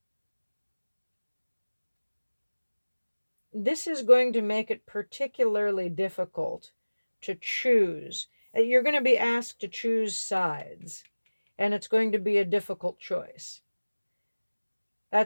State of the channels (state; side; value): inverted; both; correlation -1.00